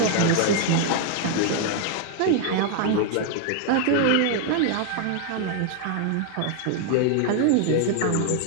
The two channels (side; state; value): both; different; correlation 0.00